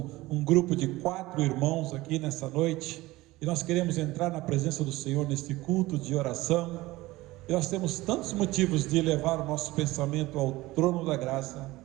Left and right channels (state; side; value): quieter; left; 19.0 dB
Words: um grupo de 4 irmãos aqui nessa noite, e nós queremos entrar na presença do Senhor neste culto de oração. E nós temos tantos motivos de levar o nosso pensamento ao trono da graça